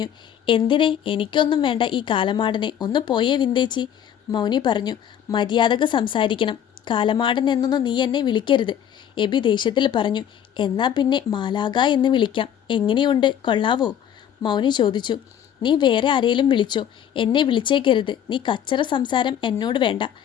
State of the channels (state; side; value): quieter; right; 9.6 dB